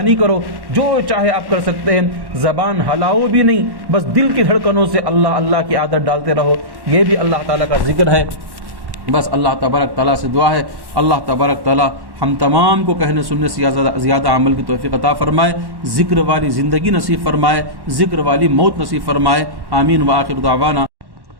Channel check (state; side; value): late; left; 1.1 ms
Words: کرو، جو چاہے آپ کر سکتے ہیں۔ زبان ہلاؤ بھی نہیں، بس دل کی دھڑکنوں سے اللہ اللہ کی عادت ڈالتے رہو، یہ بھی اللہ تعالیٰ کا ذکر ہے۔ بس اللہ تبارک تعالیٰ سے دعا ہے اللہ تبارک تعالیٰ ہم تمام کو کہنے سننے سے زیادہ عمل کی توفیق عطا فرمائے، ذکر والی زندگی نصیب فرمائے، ذکر والی موت نصیب فرمائے، آمین وآخر دعوانا